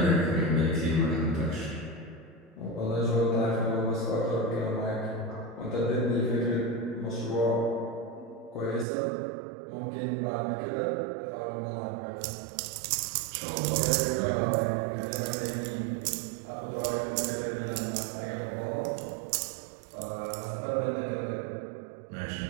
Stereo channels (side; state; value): left; drops out; at 8.8 s